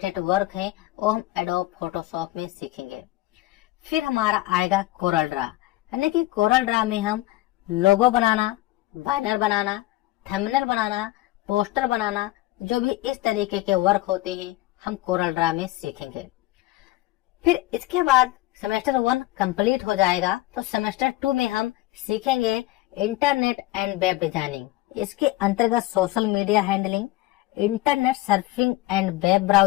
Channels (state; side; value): quieter; right; 17.6 dB